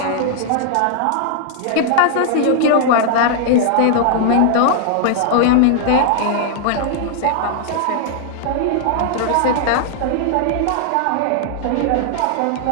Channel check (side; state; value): both; different; correlation -0.01